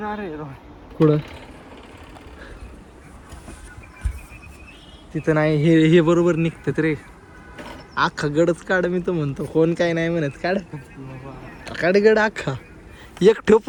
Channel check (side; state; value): both; identical; correlation 1.00